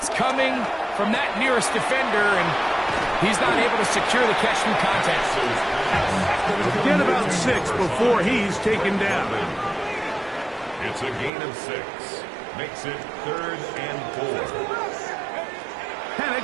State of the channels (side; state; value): left; drops out; at 11.3 s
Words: coming from that nearest defender, and he's not able to secure the catch through contact. Get about 6 before he's taken down. It's a gain of 6. Makes it 3rd and 4.